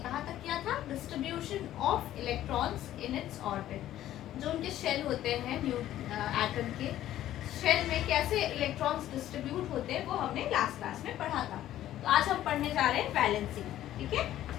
कहा तक किया था distribution of electrons in its orbit. जो उनके शेल होते हैं एटम के शेल में कैसे इलेक्ट्रॉन्स डिस्ट्रीब्यूट होते हैं वो हमने लास्ट क्लास में पढ़ा था। तो आज हम पढ़ने जा रहे हैं वैलेंसी। ठीक है,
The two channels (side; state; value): right; quieter; 12.9 dB